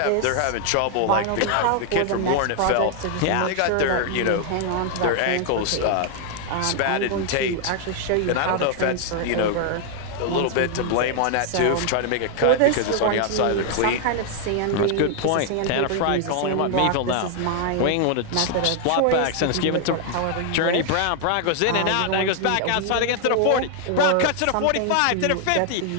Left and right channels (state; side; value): different; both; correlation 0.00